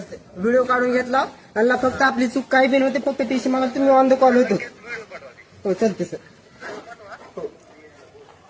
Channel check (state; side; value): identical; both; correlation 1.00